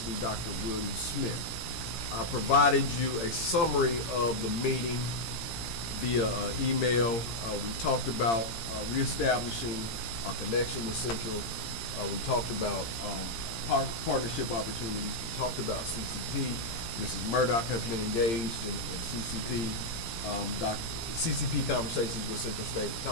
Dr. William Smith. I provided you a summary of the meeting via email. We talked about reestablishing our connection with Central. We talked about partnership opportunities. We talked about CCP. Mrs. Murdoch has been engaged in CCP. CCP conversations with Central State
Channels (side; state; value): right; late; 17 ms